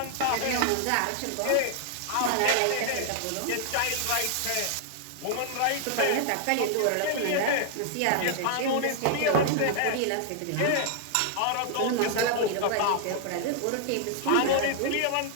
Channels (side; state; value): both; different; correlation 0.00